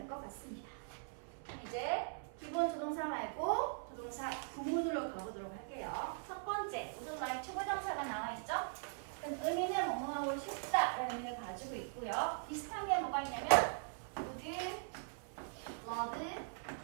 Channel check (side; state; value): left; silent; 50 dB below the other